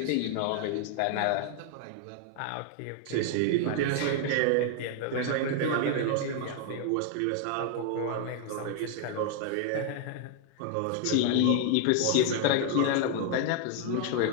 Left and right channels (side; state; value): both; different; correlation 0.00